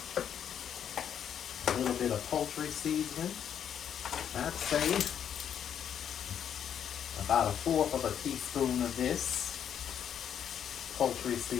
A little bit of poultry seasoning. I'd say about a fourth of a teaspoon of this poultry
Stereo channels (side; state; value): right; quieter; 8.8 dB